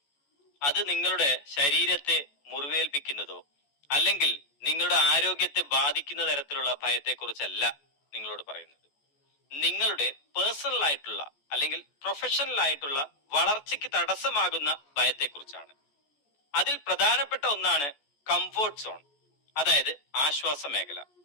അത് നിങ്ങളുടെ ശരീരത്തെ മുറിവേൽപ്പിക്കുന്നതോ അല്ലെങ്കിൽ നിങ്ങളുടെ ആരോഗ്യത്തെ ബാധിക്കുന്ന തരത്തിലുള്ള ഭയത്തെക്കുറിച്ചല്ല നിങ്ങളോട് പറയുന്നത്. നിങ്ങളുടെ പേഴ്സണൽ ആയിട്ടുള്ള അല്ലെങ്കിൽ പ്രൊഫഷണൽ ആയിട്ടുള്ള വളർച്ചയ്ക്ക് തടസ്സമാകുന്ന ഭയത്തെക്കുറിച്ചാണ്. അതിൽ പ്രധാനപ്പെട്ട ഒന്നാണ് കംഫോർട്ട് സോൺ, അതായത് ആശ്വാസ മേഖല.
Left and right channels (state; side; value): late; right; 14 ms